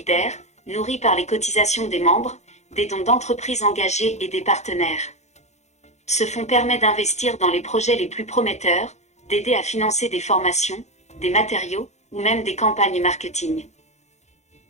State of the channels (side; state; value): right; late; 0.33 ms